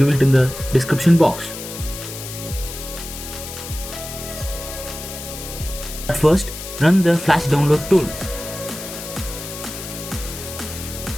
it in the description box. At first, run the flash download tool.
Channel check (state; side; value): noise; left; hiss, 10 dB below the sound